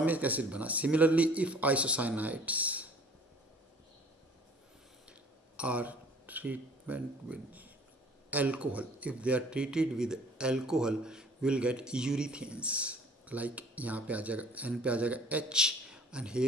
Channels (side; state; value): both; normal; correlation 0.51